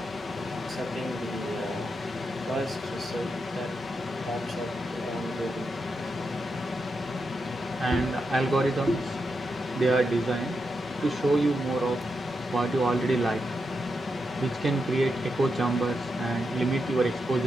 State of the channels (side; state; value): both; normal; correlation 0.85